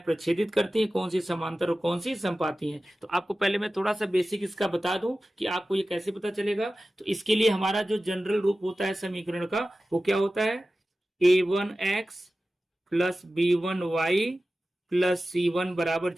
प्रच्छेदित करती हैं, कौन सी समांतर और कौन सी संपाती हैं। तो आपको पहले मैं थोड़ा सा बेसिक इसका बता दूं कि आपको ये कैसे पता चलेगा। तो इसके लिए हमारा जो जनरल रूप होता है समीकरण का, वो क्या होता है? A1x plus B1y plus C1 बराबर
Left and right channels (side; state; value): both; normal; correlation 0.95